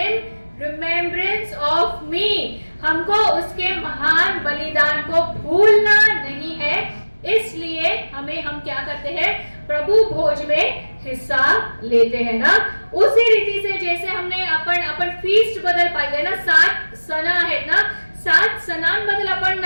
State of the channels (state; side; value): inverted; both; correlation -1.00